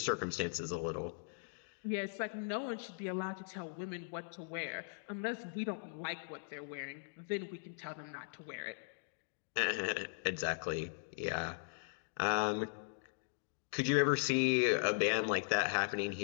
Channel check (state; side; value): silent; right; digital silence